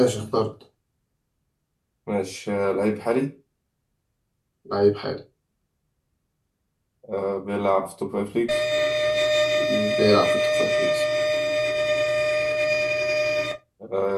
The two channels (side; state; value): both; identical; correlation 1.00